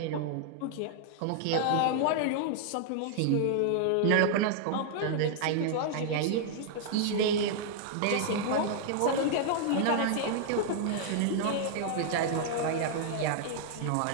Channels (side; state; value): both; different; correlation 0.00